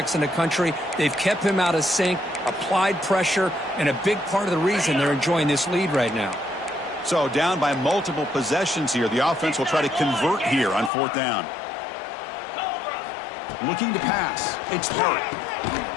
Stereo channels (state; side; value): drops out; right; at 10.9 s